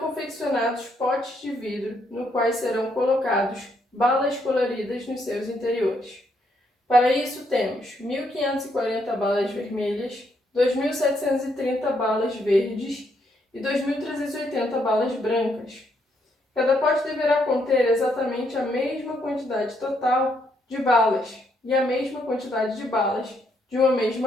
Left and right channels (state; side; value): normal; both; correlation 0.74